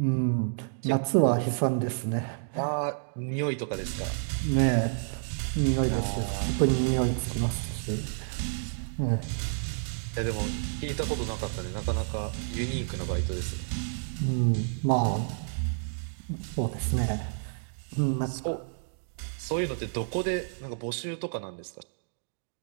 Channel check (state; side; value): silent; left; digital silence